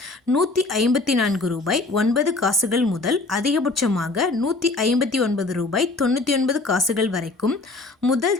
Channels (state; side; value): quieter; right; 3.3 dB